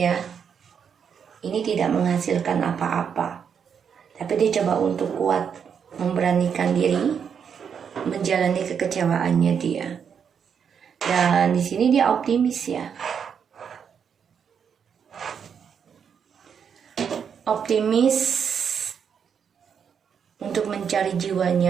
ini tidak menghasilkan apa-apa, tapi dia coba untuk kuat, memberanikan diri menjalani kekecewaannya dia. Dan di sini dia optimis ya, optimis untuk mencari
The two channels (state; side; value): quieter; left; 7.3 dB